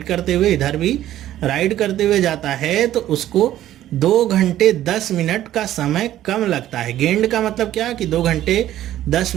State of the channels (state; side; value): quieter; left; 13.0 dB